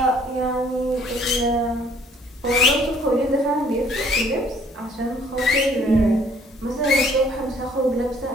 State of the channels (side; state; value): both; normal; correlation 0.59